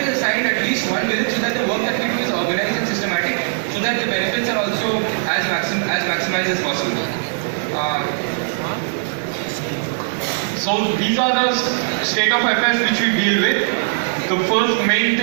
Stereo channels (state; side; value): silent; left; digital silence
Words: assigned at least 1 village so that the work that we do is organized and systematic, so that the benefits are also as maximized as possible. So these are the state of affairs which we deal with. The first main